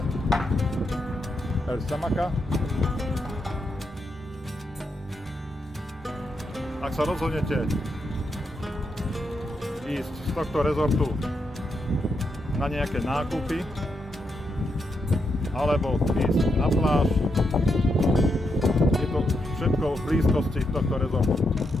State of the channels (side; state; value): both; normal; correlation 0.82